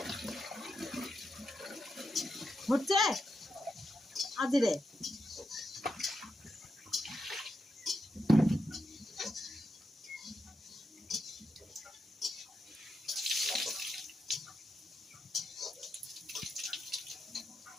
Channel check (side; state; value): both; normal; correlation 0.85